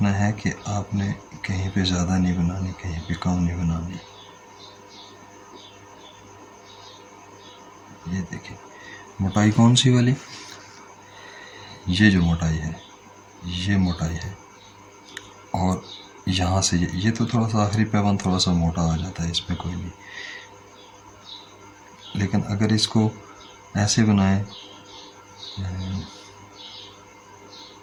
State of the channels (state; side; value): identical; both; correlation 1.00